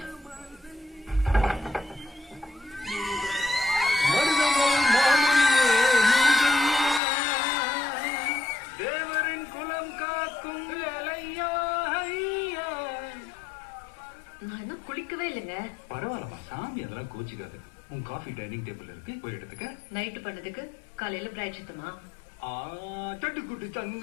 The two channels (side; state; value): right; drops out; at 7.0 s